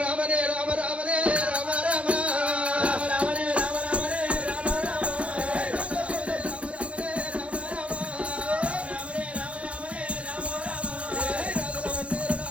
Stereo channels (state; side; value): late; left; 0.062 ms